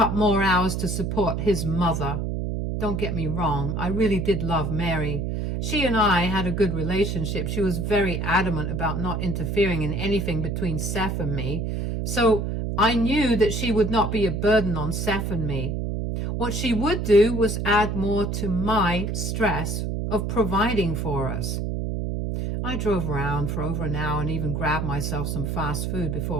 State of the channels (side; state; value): right; noise; hum, 2 dB below the sound